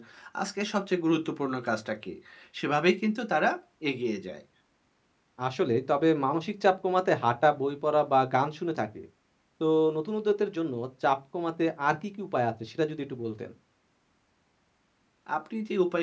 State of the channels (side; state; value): both; identical; correlation 1.00